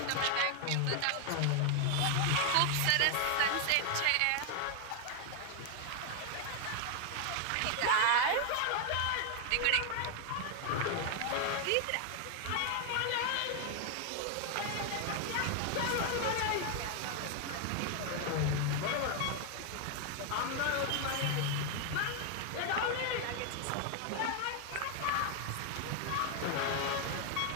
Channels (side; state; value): both; different; correlation 0.00